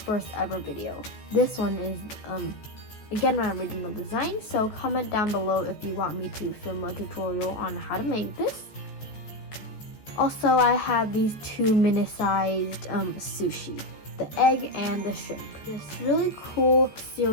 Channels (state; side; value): late; right; 14 ms